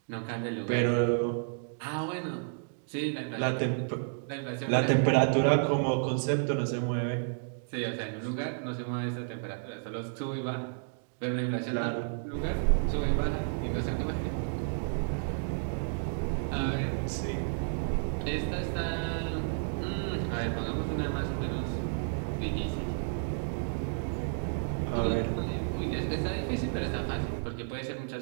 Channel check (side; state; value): left; silent; digital silence